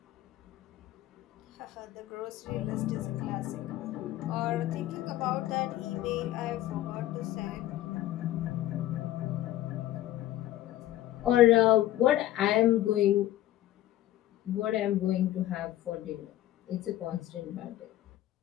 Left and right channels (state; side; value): quieter; right; 14.2 dB